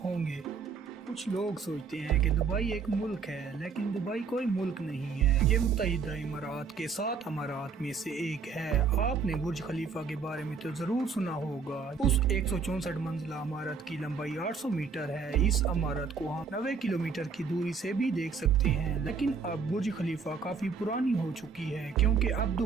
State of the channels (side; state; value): left; quieter; 5.4 dB